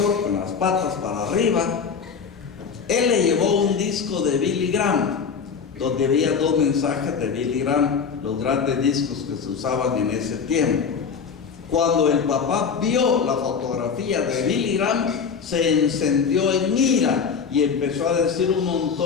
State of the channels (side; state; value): right; quieter; 6.1 dB